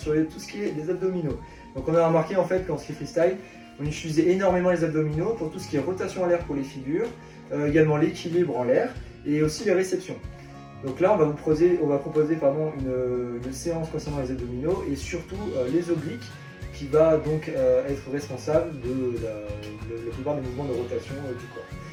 tout ce qui est les abdominaux. Donc on a remarqué en fait qu'en ski freestyle, on utilisait énormément les abdominaux pour tout ce qui est rotation en l'air pour les figures, également l'équilibre en l'air et aussi les réceptions. Donc là, on va proposer une séance concernant les abdominaux et surtout les obliques qui va donc être responsable de la plupart des mouvements de rotation du corps.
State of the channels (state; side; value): identical; both; correlation 1.00